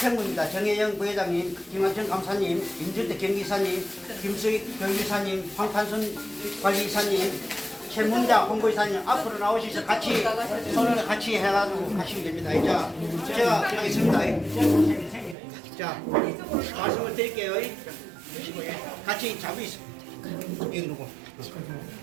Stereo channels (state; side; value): drops out; left; at 15.4 s